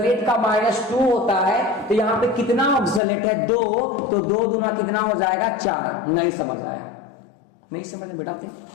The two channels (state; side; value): drops out; right; at 3.0 s